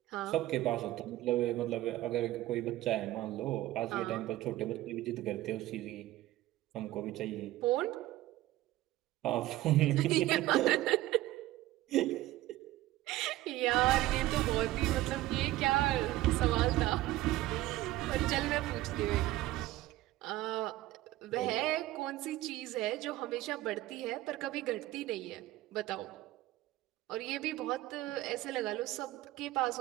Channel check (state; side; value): quieter; left; 16.3 dB